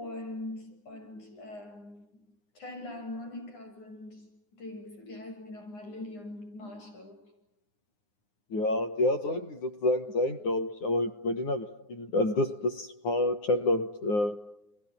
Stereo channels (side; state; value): right; late; 9.7 ms